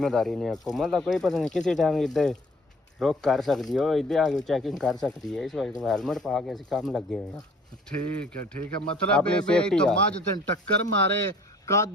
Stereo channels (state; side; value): normal; both; correlation 0.54